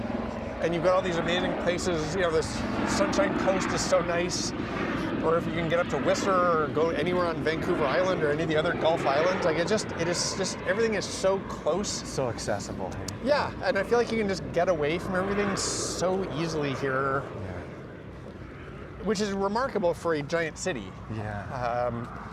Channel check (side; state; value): both; identical; correlation 1.00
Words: you've got all these amazing places. You know, this Sunshine Coast is so nice. or if you can get up to Whistler or go anywhere on Vancouver Island or any of the other Gulf Islands, like it is just everything is so close. So accessible. Yeah, and I feel like you can just get away from everything so easily here, which is remarkable for a giant city. Yeah.